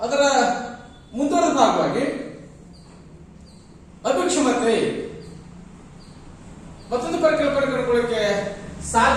ಅದರ ಮುಂದುವರೆದ ಭಾಗವಾಗಿ ಅಭಿಕ್ಷಮತೆ ಮತ್ತೊಂದು ಪರಿಕಲ್ಪನೆ ಕಂಡುಕೊಳ್ಳಕ್ಕೆ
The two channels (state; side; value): identical; both; correlation 1.00